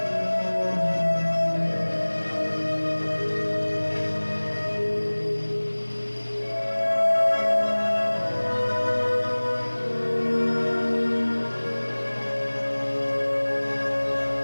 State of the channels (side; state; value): both; inverted; correlation -1.00